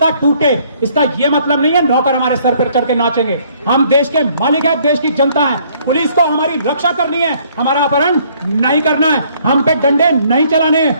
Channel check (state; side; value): inverted; both; correlation -0.63